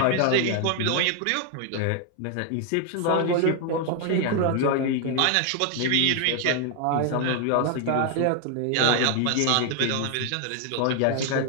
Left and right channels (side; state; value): both; different; correlation 0.00